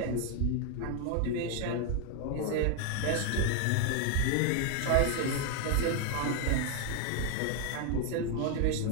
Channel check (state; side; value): different; both; correlation 0.01